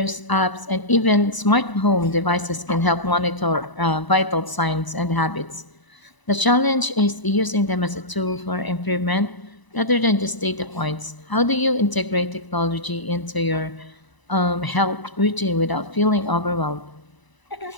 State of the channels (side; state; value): right; late; 1.0 ms